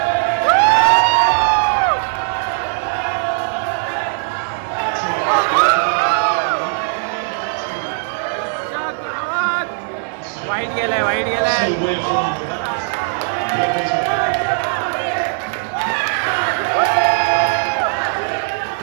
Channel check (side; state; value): left; silent; digital silence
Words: वाईट गेलाय, वाईट गेलाय.